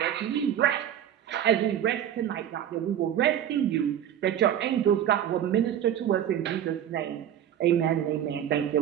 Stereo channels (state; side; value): quieter; left; 10.3 dB